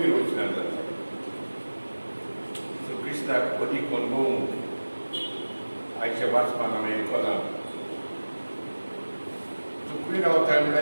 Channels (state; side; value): inverted; both; correlation -1.00